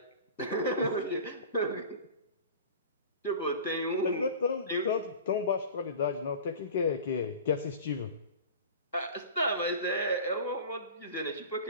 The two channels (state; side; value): inverted; both; correlation -0.36